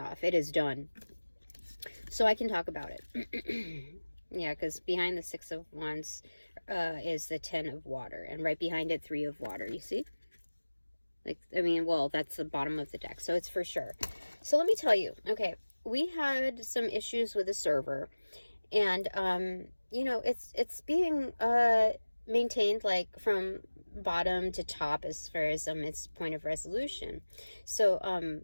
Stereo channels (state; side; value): inverted; both; correlation -1.00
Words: It is done. So I can talk about it. Yeah, because behind the 6 of Wands is the 10 of water, and right behind it 3 of water, you see? Like, I mean, well, that's the bottom of the deck, so it's for sure. So let me tell you, okay, we had some issues with the server, and, you know, it's being maintained, like, from bottom to top as far as its point of resolution. So,